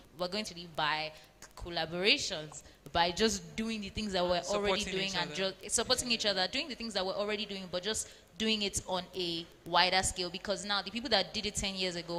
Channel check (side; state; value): both; identical; correlation 1.00